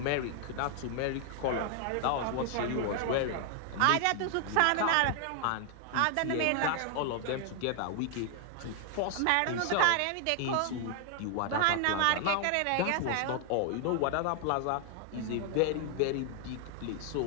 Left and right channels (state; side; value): different; both; correlation 0.00